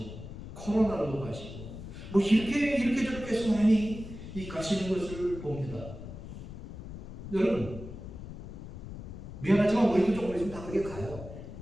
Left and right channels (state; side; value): noise; left; rumble, 11 dB below the sound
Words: 코로나로도 가시고 이렇게 저렇게 해서 많이 가시는 것을 봅니다. 여러분 미안하지만 우리도 조금 있으면 다 그렇게 가요.